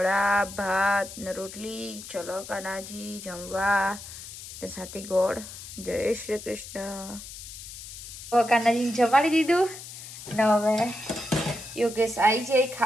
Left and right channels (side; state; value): left; noise; hiss, 13 dB below the sound